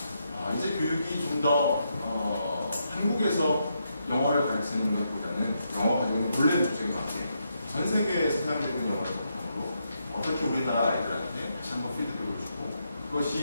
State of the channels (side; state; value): both; inverted; correlation -0.81